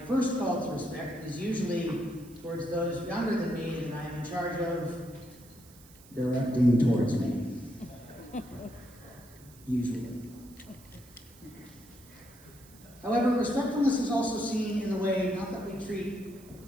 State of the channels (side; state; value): right; noise; hiss, 23 dB below the sound